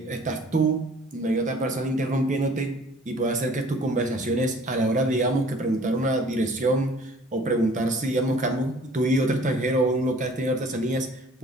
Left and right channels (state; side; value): normal; both; correlation 0.52